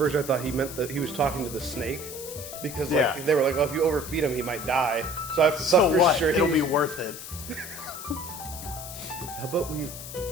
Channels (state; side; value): noise; left; hiss, 11 dB below the sound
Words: I thought he meant that he was talking to the snake. Because like they were like, oh, if you overfeed him, he might die. So I thought for sure It'll be worth it. How about we...